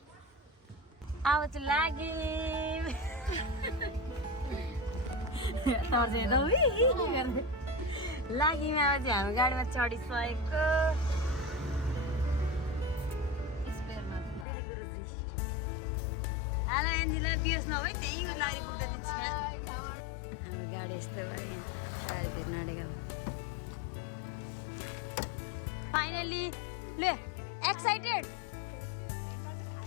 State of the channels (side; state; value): right; drops out; at 14.5 s